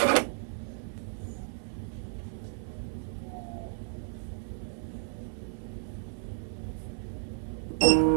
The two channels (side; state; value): left; silent; 56 dB below the other